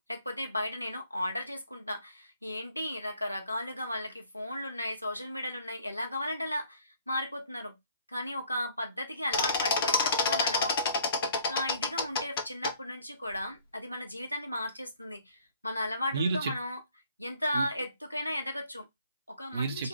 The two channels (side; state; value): both; inverted; correlation -0.61